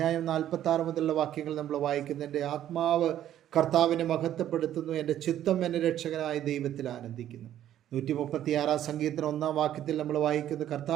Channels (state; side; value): quieter; left; 11.6 dB